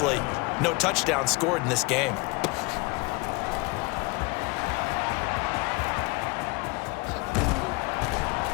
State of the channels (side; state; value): right; quieter; 26.7 dB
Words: no touchdown scored in this game.